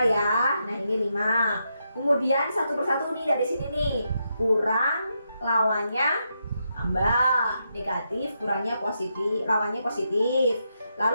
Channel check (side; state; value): both; inverted; correlation -0.83